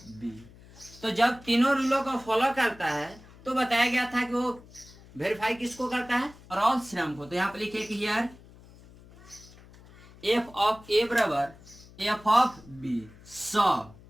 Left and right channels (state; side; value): noise; left; hum, 22 dB below the sound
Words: b। तो जब तीनों रूलों को फॉलो करता है तो बताया गया था कि वो वेरीफाई किसको करता है, रॉल्स थ्योरम को। तो यहाँ पे लिखिए कि हियर f ऑफ a बराबर f of b। So